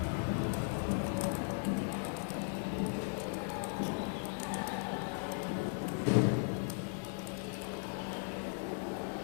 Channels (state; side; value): silent; right; 53 dB below the other